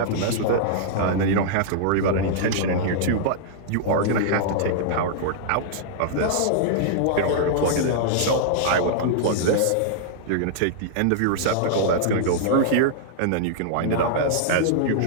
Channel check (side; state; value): both; different; correlation -0.01